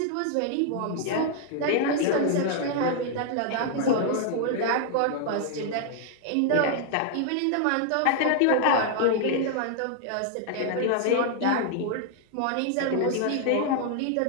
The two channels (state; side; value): different; both; correlation -0.01